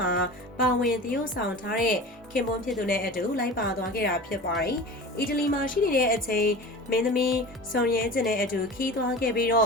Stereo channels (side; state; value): both; normal; correlation 0.34